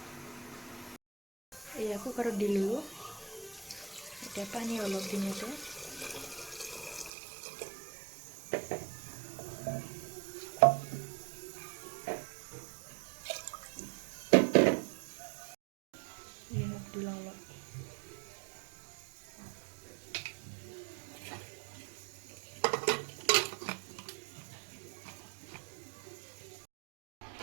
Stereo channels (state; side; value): drops out; left; at 7.1 s